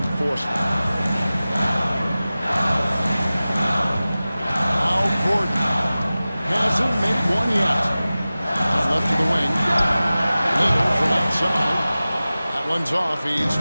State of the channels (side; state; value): both; inverted; correlation -0.97